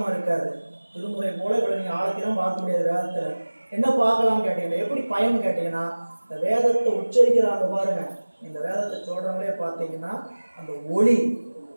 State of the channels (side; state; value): both; inverted; correlation -1.00